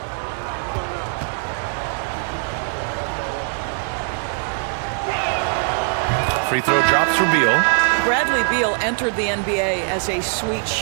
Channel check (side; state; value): left; silent; 58 dB below the other